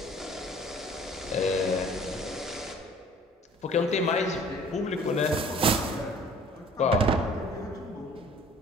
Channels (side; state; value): both; normal; correlation 0.51